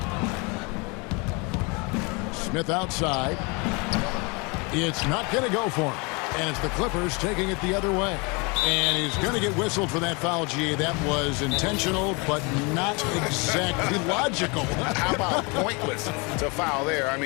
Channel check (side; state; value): right; quieter; 29.6 dB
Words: Smith outside. It's not going to go for him. And it's the Clippers taking it the other way. And he's going to get whistled for that foul, G. That was intentional, but not exactly logical. How about pointless to foul there? I